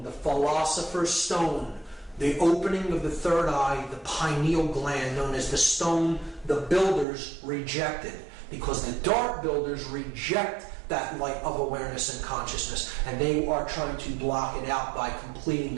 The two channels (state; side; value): drops out; left; at 7.1 s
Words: the philosopher's stone, the opening of the third eye, the pineal gland, known as the stone the builders rejected. Because the dark builders reject that light of awareness and consciousness, and they are trying to block it out by completing